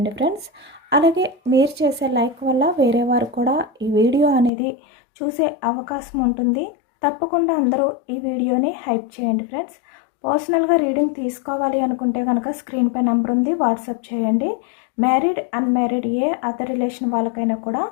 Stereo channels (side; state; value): right; drops out; at 4.5 s